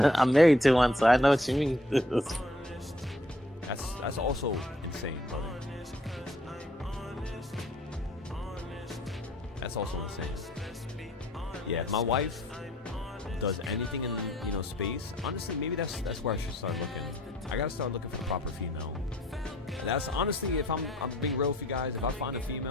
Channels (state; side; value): normal; both; correlation 0.61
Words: I'm married to one, so I know what you mean. That's also insane, brother. That's also insane. Yeah, if my wife does anything in, you know, space, honestly, maybe that's where I should start looking. I gotta start looking for the proper female. That's honestly, if I'm being real with you guys, if I find a